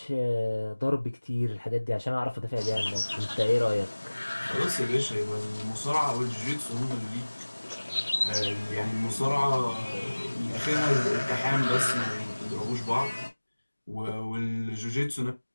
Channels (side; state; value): both; inverted; correlation -1.00